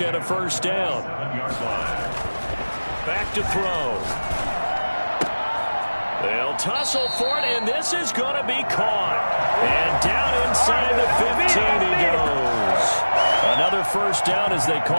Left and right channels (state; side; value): inverted; both; correlation -1.00